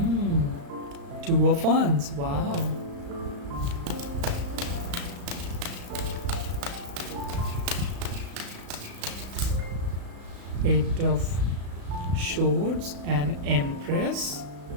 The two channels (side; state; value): left; late; 35 ms